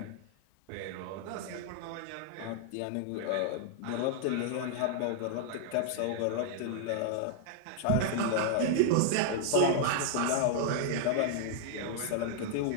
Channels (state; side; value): different; both; correlation -0.01